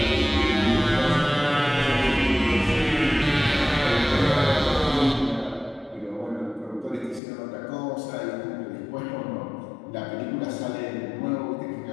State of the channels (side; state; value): right; drops out; at 7.2 s